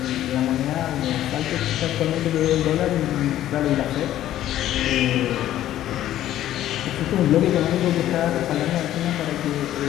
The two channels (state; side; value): quieter; right; 12.8 dB